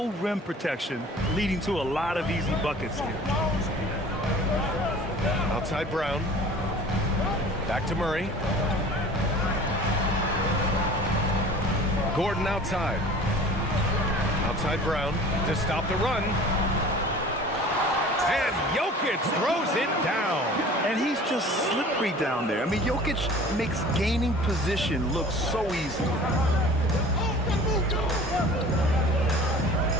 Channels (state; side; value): normal; both; correlation 0.44